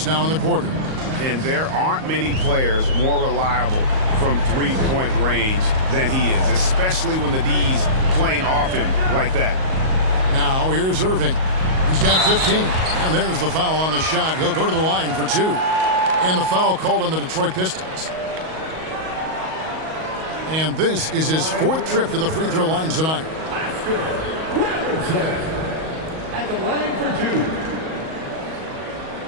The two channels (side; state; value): left; late; 38 ms